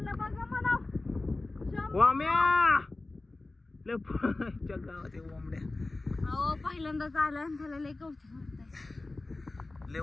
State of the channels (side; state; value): right; quieter; 3.1 dB